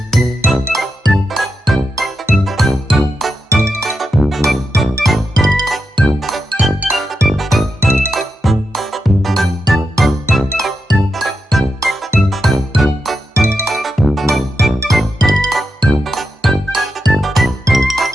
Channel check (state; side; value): normal; both; correlation 0.86